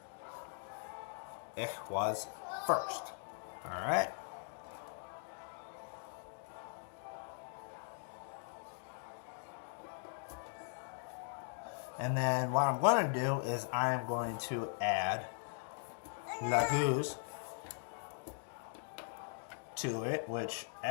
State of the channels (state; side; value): silent; right; digital silence